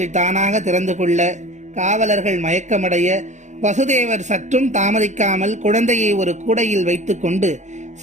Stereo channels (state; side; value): late; left; 0.34 ms